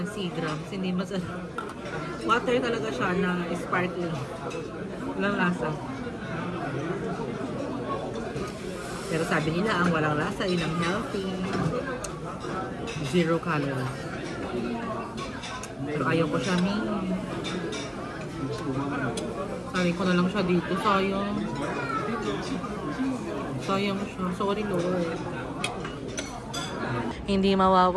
Seagrams. Hindi masarap. Water talaga siya na sparkling. Walang lasa. Pero sabi nila, ang walang lasa, yun ang healthy. 0 calories. Pero ayaw ko siya, Sabi ko na lang siya dito. Sayang. Sayang siya. Sorry, Lord. Hindi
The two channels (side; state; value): both; identical; correlation 1.00